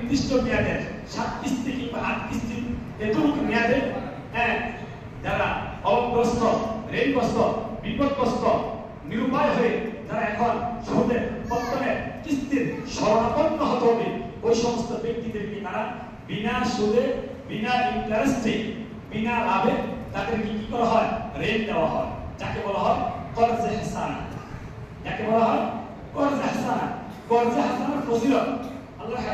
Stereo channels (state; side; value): identical; both; correlation 1.00